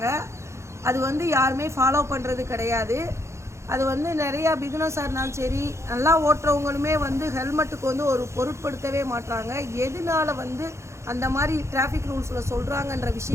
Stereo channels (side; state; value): left; late; 0.14 ms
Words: அது யாருமே ஃபாலோ பண்ணுறது கிடையாது. அது நிறையா பிகினர்ஸாக இருந்தாலும் சரி, நல்லா ஓட்டுறவங்களுமே ஹெல்மெட்டுக்கு ஒரு பொருட்படுத்தவே மாட்டாங்க. எதனால அந்த மாதிரி டிராஃபிக் ரூல்ஸில் சொல்கிறாங்கன்ற